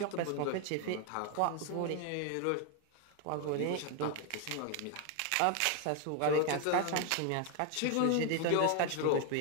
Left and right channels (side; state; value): both; different; correlation 0.01